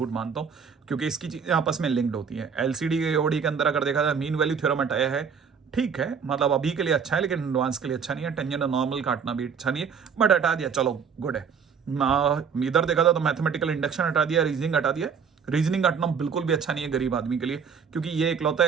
मानता हूँ, क्योंकि इसकी चीजें आपस में लिंक्ड होती है। एलसीडी के ओडी के अंदर अगर देखा जाए मीन वैल्यू थ्योरम हटाया है, ठीक है, मतलब अभी के लिए अच्छा है, लेकिन एडवांस के लिए अच्छा नहीं है। टेंजेंट नॉर्मल काटना भी अच्छा नहीं है, बट हटा दिया, चलो गुड है। इधर देखा था तो मैथमेटिकल इंडक्शन हटा दिया, रीजनिंग हटा दिया। रीजनिंग हटना बिल्कुल भी अच्छा नहीं है गरीब आदमी के लिए, क्योंकि ये इकलौता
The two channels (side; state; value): left; quieter; 6.5 dB